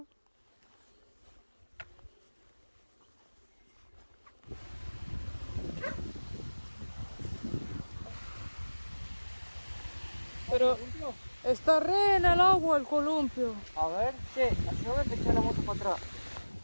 Pero está re en el agua el columpio. A ver, che, ayúdame a echar la moto para atrás.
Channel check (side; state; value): both; inverted; correlation -1.00